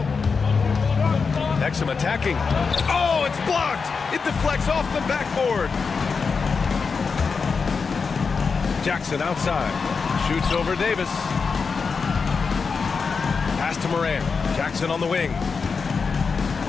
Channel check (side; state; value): right; quieter; 5.1 dB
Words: Exum attacking. Oh, it's blocked. It deflects off the backboard. Jackson outside. Shoots over Davis. Pass to Morant. Jackson on the wing.